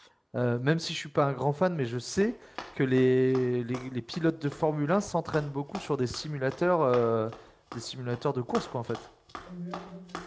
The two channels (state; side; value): identical; both; correlation 1.00